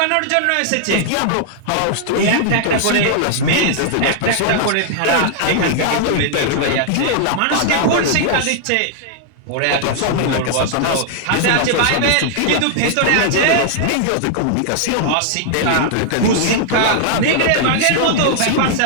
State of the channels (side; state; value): both; different; correlation -0.01